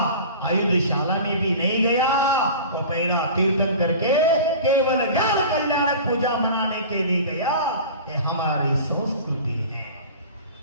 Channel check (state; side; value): inverted; both; correlation -0.38